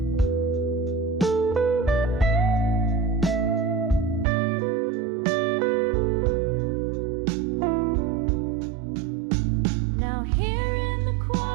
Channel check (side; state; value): left; drops out; at 4.2 s